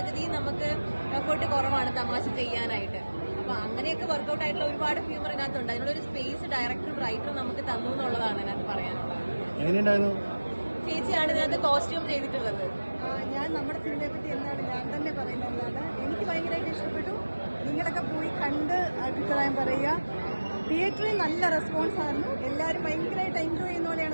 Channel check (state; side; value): inverted; both; correlation -1.00